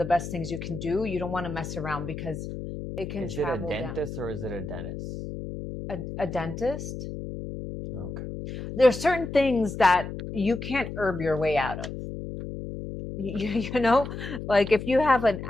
best things you can do. You don't want to mess around, because it can Is it a travel down. dentist or is it a dentist? A dentist. Okay. There are certain things that you can't herb your way out of. You know, like if you have an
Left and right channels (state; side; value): noise; left; hum, 8 dB below the sound